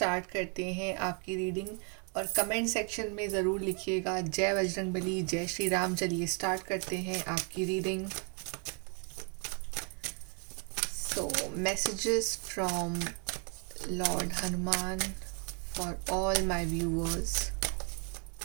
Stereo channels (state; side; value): quieter; left; 38.5 dB